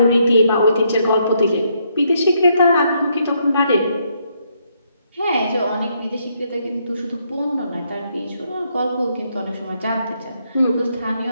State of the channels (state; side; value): inverted; both; correlation -0.74